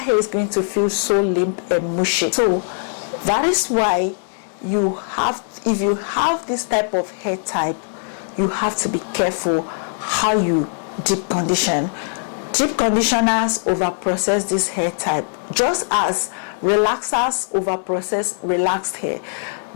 hair is going to feel so limp and mushy. So that is why if you have this type of hair type, you have to be careful how you deep condition. Deep conditioners over process this hair type, just as relaxers over process relaxed hair.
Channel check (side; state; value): right; silent; digital silence